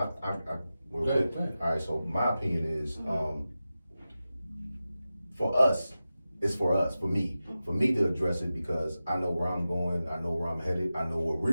Go ahead. all right. So my opinion is, for us, it's for us, for me to address it, because I know where I'm going, I know where I'm headed, I know where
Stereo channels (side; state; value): both; inverted; correlation -0.94